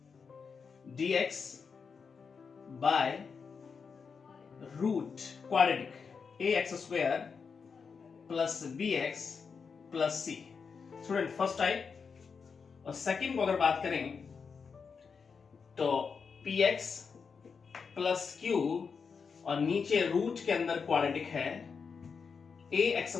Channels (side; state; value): right; quieter; 5.6 dB